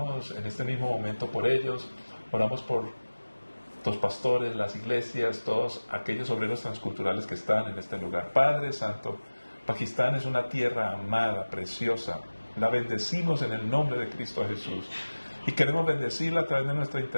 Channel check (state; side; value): inverted; both; correlation -1.00